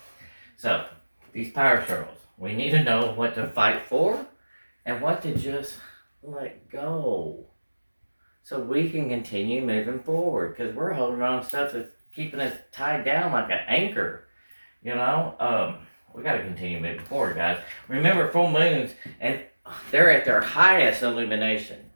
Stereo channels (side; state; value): both; inverted; correlation -1.00